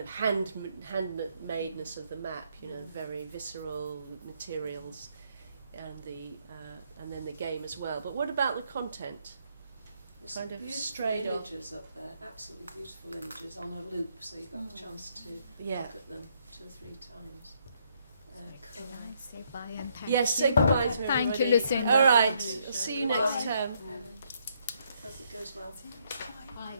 of handmadeness of the map, you know, very visceral materials, and then the game as well. But what about the content? There's Kind some of beautiful straight off. images up there, absolutely beautiful images on a loop, so you got the chance to Yeah. look at them 2 or 3 times. Can I say bye and thank Yes, you? say goodbye to Thank you, everybody. Lucinda. All right, I'll see you next term. Hope it goes well. Bye.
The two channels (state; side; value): inverted; both; correlation -0.72